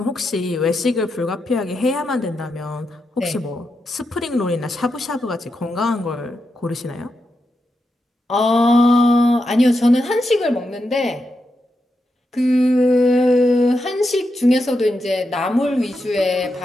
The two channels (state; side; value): normal; both; correlation 0.86